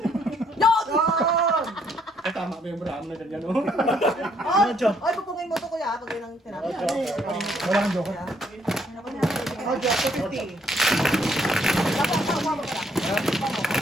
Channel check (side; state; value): both; normal; correlation 0.68